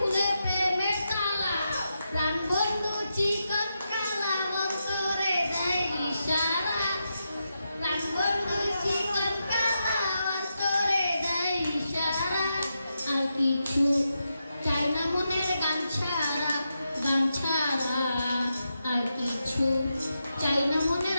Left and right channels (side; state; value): both; inverted; correlation -0.86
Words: প্রেমের তালা। প্রাণ বন্ধু চিকন কালা অন্তরে দেয় ইশারা। প্রাণ বন্ধু চিকন কালা অন্তরে দেয় ইশারা। আর কিছু চাই না মনের গান ছাড়া, গান ছাড়া আর কিছু চাই না